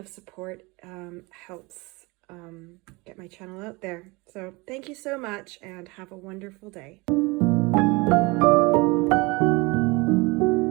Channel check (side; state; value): left; quieter; 25.3 dB